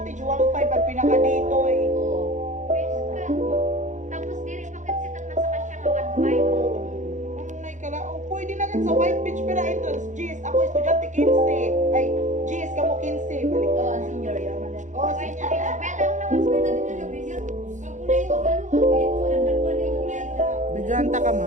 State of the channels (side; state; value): left; late; 0.35 ms